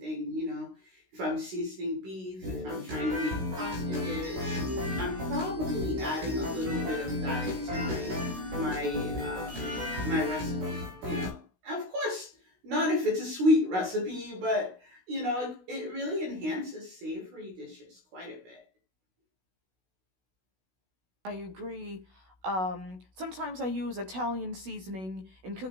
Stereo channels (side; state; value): left; late; 16 ms